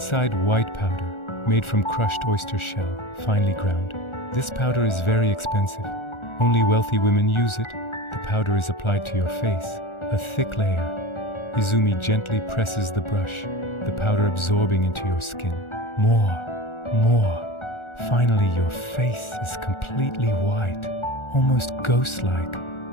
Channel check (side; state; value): right; late; 1.4 ms